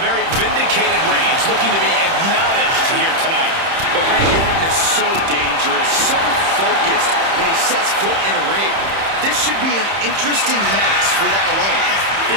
vindicated Reigns looking to be acknowledged here tonight. But Randy Orton is so dangerous, so focused when he sets foot in a ring. This should be an interesting match for that alone.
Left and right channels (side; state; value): left; late; 30 ms